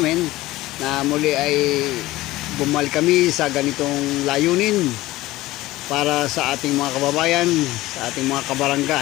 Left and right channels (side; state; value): right; quieter; 17.7 dB